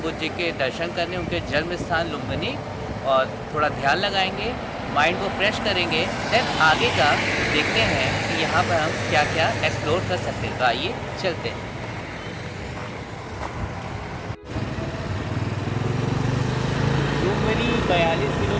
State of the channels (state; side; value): identical; both; correlation 1.00